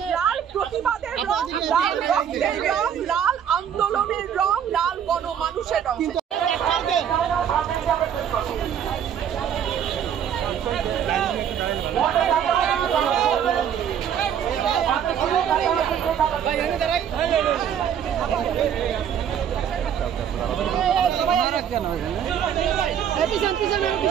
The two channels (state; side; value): quieter; left; 8.9 dB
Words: লাল প্রতিবাদের রং, লাল রক্তের রং, লাল আন্দোলনের রং, লাল গণমানুষের রং।